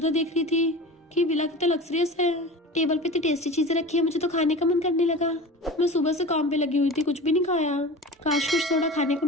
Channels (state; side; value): normal; both; correlation 0.34